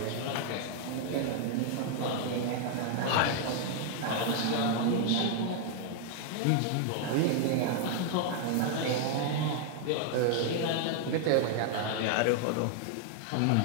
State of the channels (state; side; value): different; both; correlation 0.00